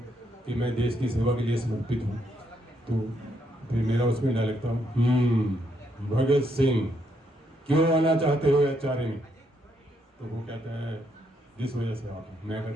कि मैं देश की सेवा के लिए समर्पित हूँ। तो फिर मेरा उसमें डायलॉग था, भगत सिंह क्यों आना चाहते हो एचआरए में? तो वो कहता है जिस वजह से आप। मैं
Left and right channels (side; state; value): both; normal; correlation 0.75